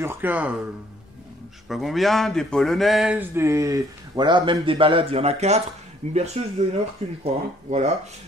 je ne sais pas combien, des polonaises, voilà, même des ballades, il y en a 4. Une berceuse de 1 heure qu'une, crois. Hein, voilà.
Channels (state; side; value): normal; both; correlation 0.62